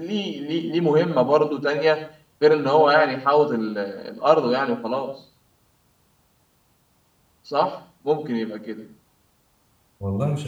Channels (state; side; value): identical; both; correlation 1.00